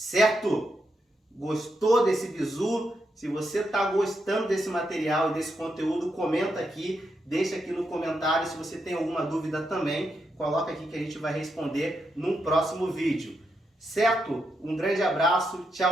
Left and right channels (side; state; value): both; normal; correlation 0.83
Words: Gostou desse bizu? Se você está gostando desse material e desse conteúdo, comenta aqui, deixa aqui no comentário. Se você tem alguma dúvida também, coloca aqui que a gente vai responder num próximo vídeo. Certo? Um grande abraço,